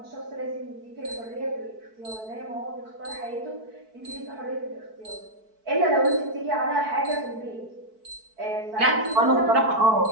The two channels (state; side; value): late; left; 4.6 ms